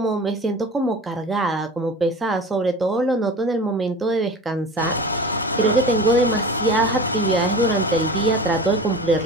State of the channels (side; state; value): both; normal; correlation 0.36